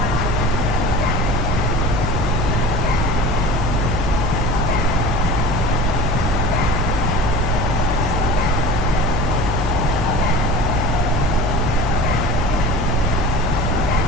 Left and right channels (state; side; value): noise; left; hum, 2 dB below the sound